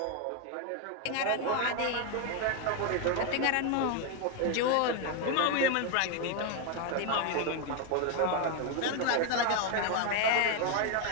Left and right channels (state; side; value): different; both; correlation 0.01